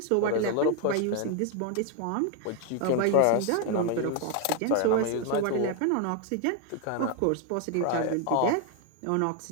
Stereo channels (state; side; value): different; both; correlation 0.01